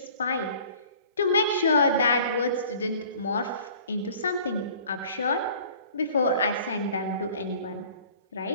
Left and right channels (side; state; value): both; inverted; correlation -0.50